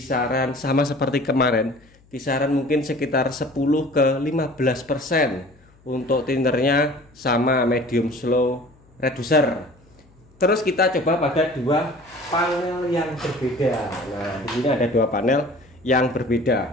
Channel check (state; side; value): noise; left; hum, 30 dB below the sound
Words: sama seperti kemarin, kisaran mungkin sekitar 10 ke 15% untuk thinnernya, sama medium slow reducer. Terus kita coba pada dua panel yang berbeda. Nah, di sini ada dua panel yang